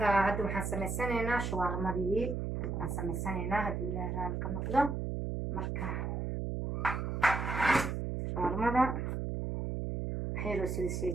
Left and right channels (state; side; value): noise; right; hum, 2 dB below the sound